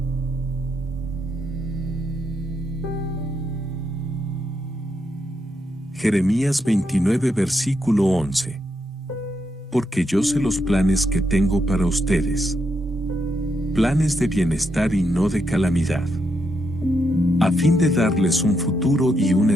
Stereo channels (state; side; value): normal; both; correlation 0.80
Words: Jeremías 29 versículo 11. Porque yo sé los planes que tengo para ustedes, planes de bienestar y no de calamidad, a fin de darles un futuro y una